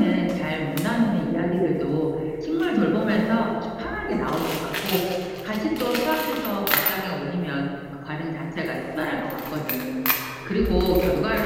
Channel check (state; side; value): identical; both; correlation 1.00